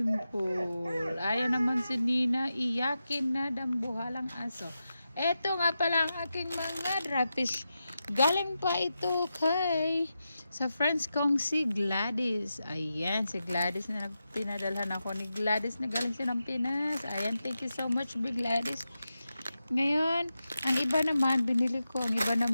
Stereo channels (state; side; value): inverted; both; correlation -0.90